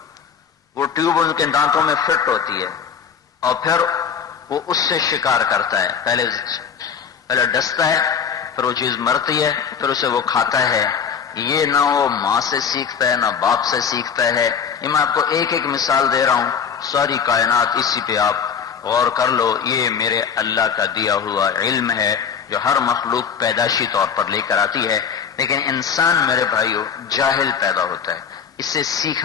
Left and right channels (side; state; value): right; quieter; 7.1 dB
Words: وہ ٹیوب ان کے دانتوں میں فٹ ہوتی ہے اور پھر وہ اس سے شکار کرتا ہے. پہلے ڈستا ہے، پھر وہ چیز مرتی ہے، پھر اسے وہ کھاتا ہے. یہ نہ وہ ماں سے سیکھتا ہے نہ باپ سے سیکھتا ہے. یہ میں آپ کو ایک ایک مثال دے رہا ہوں، ساری کائنات اسی پہ آپ غور کر لو. یہ میرے اللہ کا دیا ہوا علم ہے جو ہر مخلوق پیدائشی طور پر لے کر آتی ہے. لیکن انسان میرے بھائیوں جاہل پیدا ہوتا ہے، اس سے